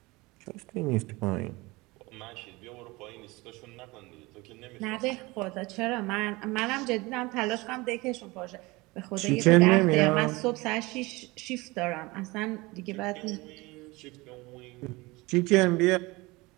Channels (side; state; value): left; quieter; 22.8 dB